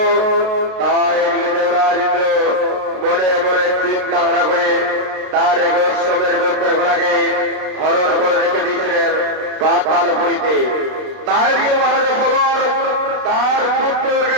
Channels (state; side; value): late; left; 32 ms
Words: মনে মনে চিন্তাধারা করে তার এক সমের যজ্ঞের ঘোড়াকে হরণ করে রেখে দিয়েছিলেন পাতালপুরীতে। তাই দিকে মহারাজা সগর তার পুত্রকে